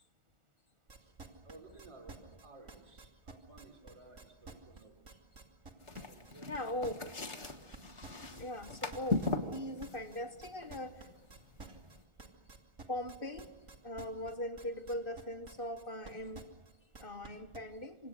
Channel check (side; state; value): left; late; 1.4 ms